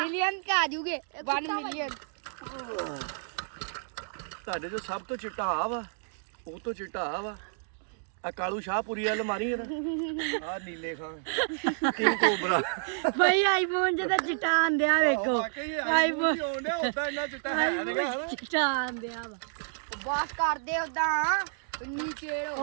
ਤੇ ਆ ਜੂਗੇ 1 ਮਿਲੀਅਨ। ਤੁਹਾਡੇ ਜੋ ਸਭ ਤੋਂ ਚਿੱਟਾ ਆ ਵਾ, ਉਹ ਤੋਂ ਚਿੱਟਾ ਆ ਵਾ ਆ ਕਾਲੂ ਸ਼ਾਹਪੁਰੀ ਵਾਲ ਮਾਰੀ ਨਾ ਆ ਨੀਲੇ ਖਾਂ ਕਿੰਗ ਕੋਬਰਾ। ਭਾਈ ਆਈਫੋਨ ਜਿਹਦਾ ਚਿੱਟਾ ਆਂਦਿਆ ਵੇਖੋ। ਆਈਫੋਨ ਆਉਂਦੇ ਉਦਾਂ ਇੰਨਾ ਚਿੱਟਾ ਹੈ ਨਹੀਂ। ਚਿੱਟਾ ਆਂਦਿਆ ਵਾ ਬਾਸ ਕਰਦੇ ਉਦਾਂ ਨੀਚੇ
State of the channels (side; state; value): left; silent; digital silence